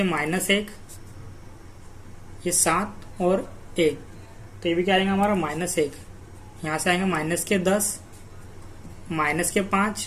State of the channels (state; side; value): identical; both; correlation 1.00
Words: -1 ये 7 और 1, तो ये भी क्या आएगा हमारा -1। यहाँ से आएंगे माइनस के 10 माइनस के